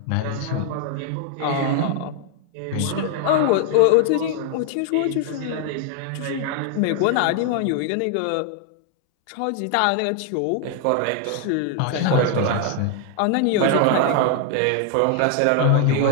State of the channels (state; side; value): different; both; correlation 0.00